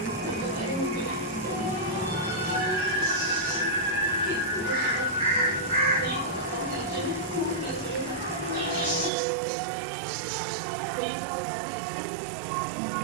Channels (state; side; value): drops out; left; at 9.1 s